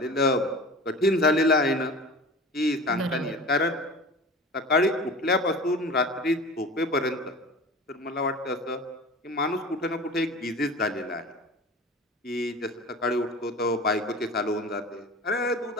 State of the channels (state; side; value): normal; both; correlation 0.36